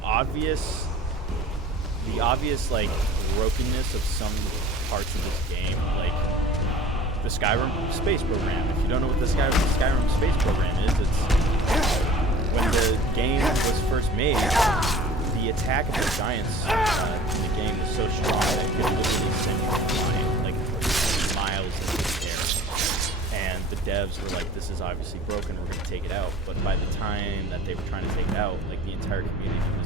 obvious like brokenness of some parts of this game, like the Skyrim space program. If you don't know what the Skyrim space program is, it's when the game was first made. The attack of the giants in the game was so strong that it could literally send you flying like miles into the air. And the devs were like, this is obviously broken, we're going to take it out. But by the time that they were trying to take it out, like the entire community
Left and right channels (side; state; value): both; normal; correlation 0.45